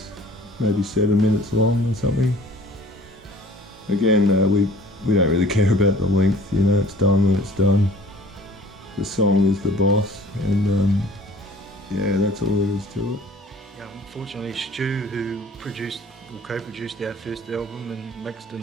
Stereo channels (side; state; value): both; normal; correlation 0.49